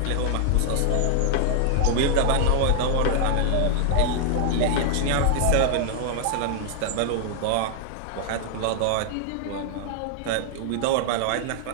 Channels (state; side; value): different; both; correlation -0.01